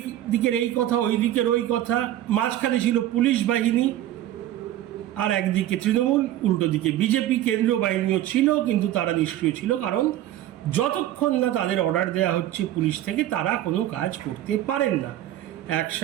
দিকের এই কথা, ওই দিকের ওই কথা। মাঝখানে ছিল পুলিশ বাহিনী, আর একদিকে তৃণমূল, উল্টো দিকে বিজেপি। কেন্দ্রীয় বাহিনীও ছিল, কিন্তু তারা নিষ্ক্রিয় ছিল, কারণ যতক্ষণ না তাদের অর্ডার দেওয়া হচ্ছে পুলিশ থেকে তারা কোনো কাজ করতে পারেন না,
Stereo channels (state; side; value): quieter; left; 13.2 dB